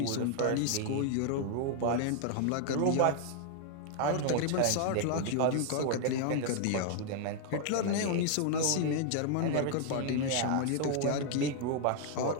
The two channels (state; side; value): different; both; correlation 0.00